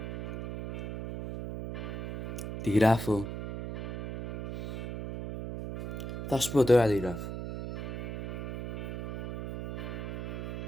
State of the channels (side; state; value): right; noise; hum, 4 dB below the sound